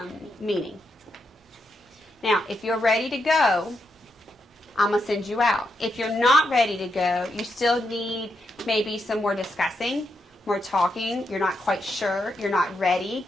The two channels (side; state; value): both; normal; correlation 0.82